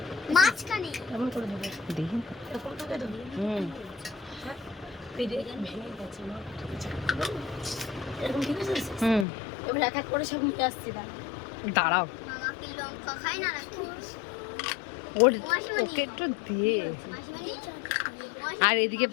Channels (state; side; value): drops out; right; at 9.2 s